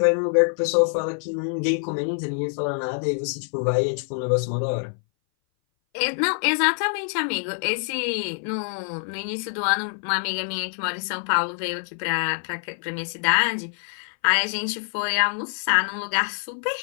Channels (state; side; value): silent; right; 59 dB below the other